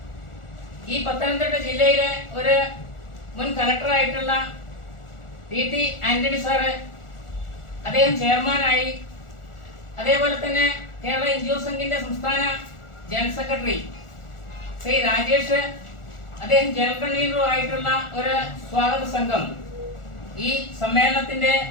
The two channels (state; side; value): late; right; 1.4 ms